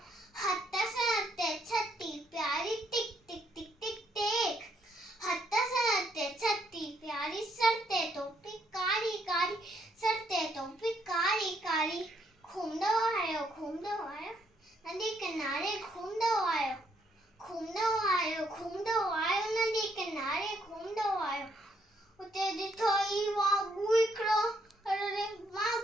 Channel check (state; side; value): normal; both; correlation 0.72